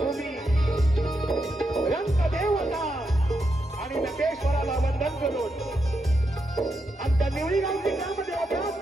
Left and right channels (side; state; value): both; normal; correlation 0.84